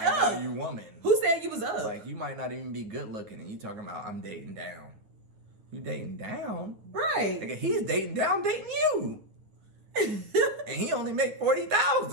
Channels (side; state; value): left; late; 9.5 ms